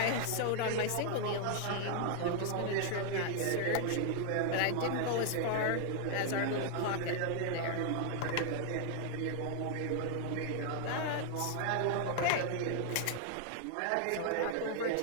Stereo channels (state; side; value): different; both; correlation 0.00